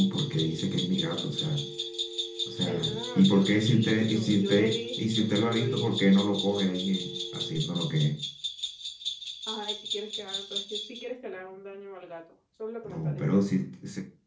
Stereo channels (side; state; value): both; identical; correlation 1.00